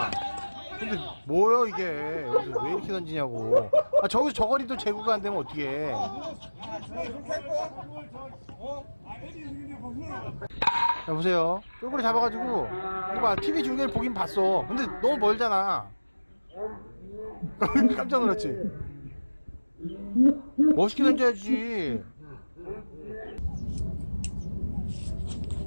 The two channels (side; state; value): both; inverted; correlation -1.00